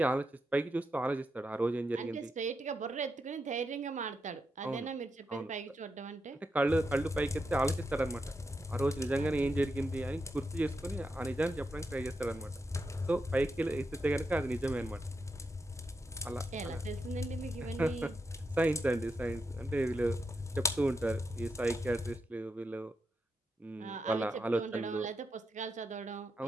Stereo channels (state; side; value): normal; both; correlation 0.85